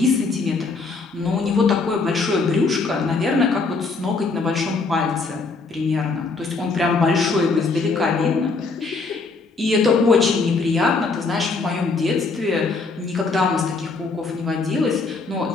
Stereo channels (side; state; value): right; quieter; 4.1 dB